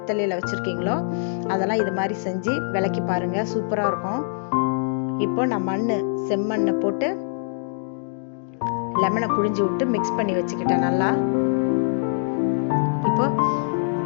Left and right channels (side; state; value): right; silent; digital silence